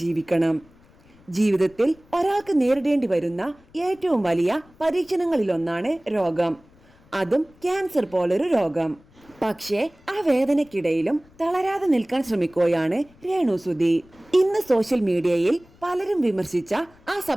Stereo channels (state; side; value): noise; left; rumble, 28 dB below the sound